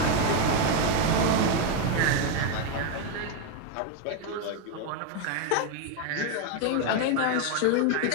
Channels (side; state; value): both; different; correlation 0.02